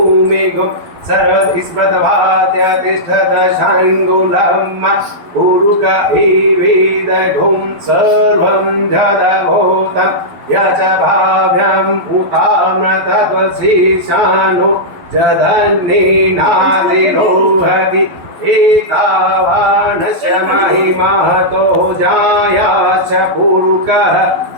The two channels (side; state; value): left; late; 12 ms